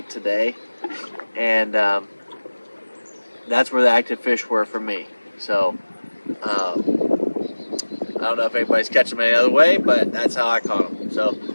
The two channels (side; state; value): both; inverted; correlation -1.00